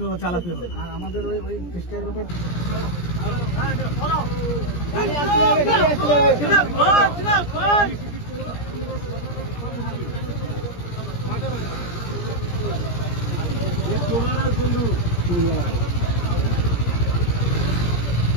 চালাতে হবে। আর আমাদের ওই চেষ্টার ব্যাপার বন্ধু।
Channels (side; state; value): right; late; 17 ms